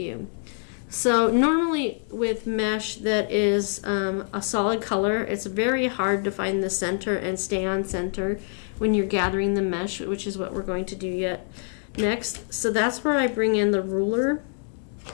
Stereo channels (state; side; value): silent; right; 55 dB below the other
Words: So normally with mesh that is a solid color, it's very hard to find the center and stay on center when you're gathering the mesh, which is what we're going to do next. So that's where I bring in the ruler